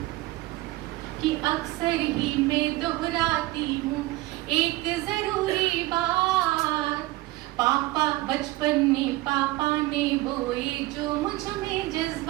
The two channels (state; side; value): quieter; left; 19.0 dB